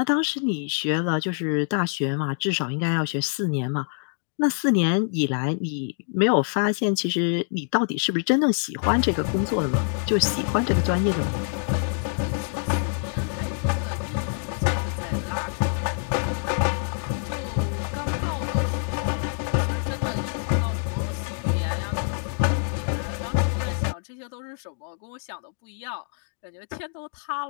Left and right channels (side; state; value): right; silent; 61 dB below the other